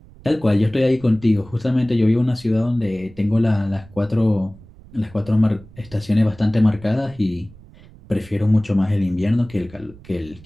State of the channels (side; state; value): right; noise; rumble, 22 dB below the sound